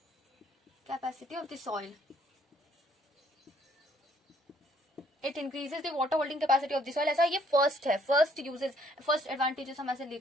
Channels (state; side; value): normal; both; correlation 0.64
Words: of the soil. It increases the water holding capacity of the soil. ऐसा ये first है, फर्स्ट एडवांटेजेस हम ऐसे